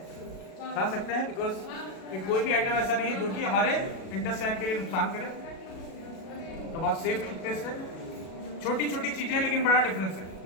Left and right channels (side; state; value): right; late; 37 ms